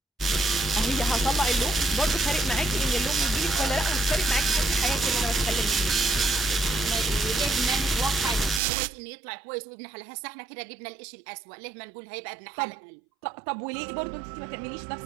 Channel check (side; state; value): left; drops out; at 8.6 s